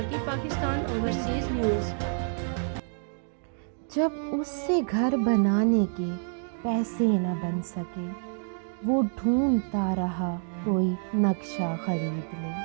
پاکستان اوورسیز نیوز۔ جب اس سے گھر بنانے کے پیسے نہ بن سکے، وہ ڈھونڈتا رہا کوئی نقشہ خرید لے۔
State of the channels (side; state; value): left; silent; digital silence